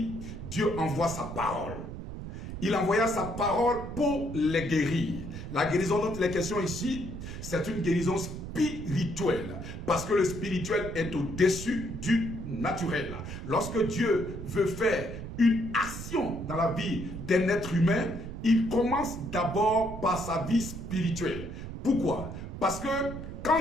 Dieu envoie sa parole. Il envoya sa parole pour les guérir. La guérison dont il est question ici, c'est une guérison spirituelle. Parce que le spirituel est au-dessus du naturel. Lorsque Dieu veut faire une action dans la vie d'un être humain, il commence d'abord par sa vie spirituelle. Pourquoi? Parce que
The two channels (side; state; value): right; noise; rumble, 9 dB below the sound